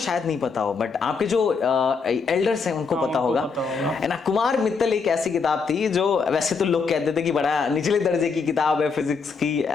नहीं पता हो, बट आपके जो एल्डर्स हैं उनको पता होगा, है ना। कुमार मित्तल एक ऐसी किताब थी जो वैसे तो लोग कहते थे कि बड़ा निचले दर्जे की किताब है फिजिक्स की,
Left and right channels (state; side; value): quieter; right; 5.1 dB